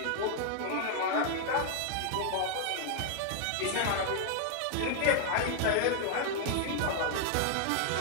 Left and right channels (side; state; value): both; different; correlation -0.01